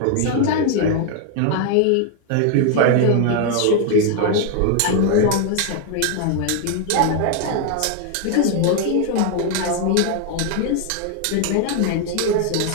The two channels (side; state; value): both; different; correlation 0.00